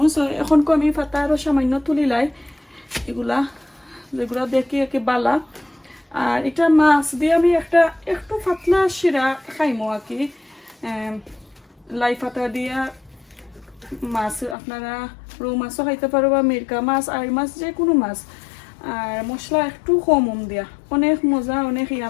সো এখন আমি পাতা আরও সামান্য তুলিলাই এগুলা যেগুলো দেখি একে বালা আর এটা মাছ দিয়ে আমি একটু পাতলা শিরা খাইমো আর কি লাই পাতা দিয়া মাছ আপনারা রৌ মাছও খাইতে পারো বা মিরকা মাছ আর মাছ যে কোনো মাছ আর মশলা একটু কম দিয়া অনেক মজা অনেক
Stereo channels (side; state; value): right; drops out; at 14.6 s